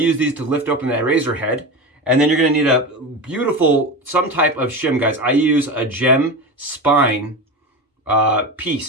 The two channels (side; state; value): both; normal; correlation 0.24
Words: these to lift open that razor head. And then you're gonna need a beautiful, some type of shim, guys. I use a gem spine